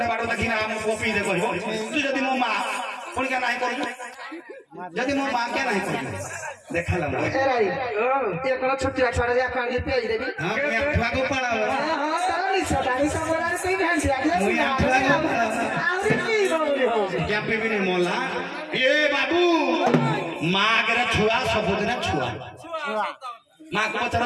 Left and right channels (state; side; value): identical; both; correlation 1.00